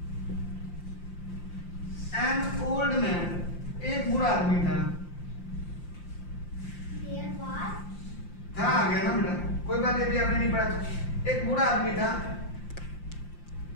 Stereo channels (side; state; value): right; late; 5.7 ms